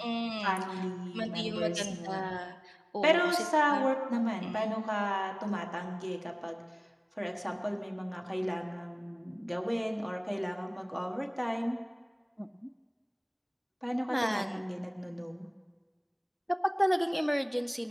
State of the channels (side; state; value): both; identical; correlation 1.00